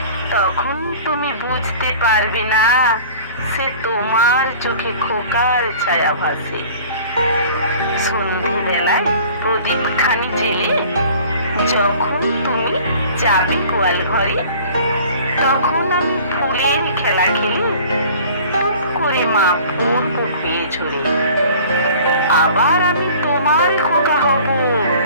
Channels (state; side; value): inverted; both; correlation -0.47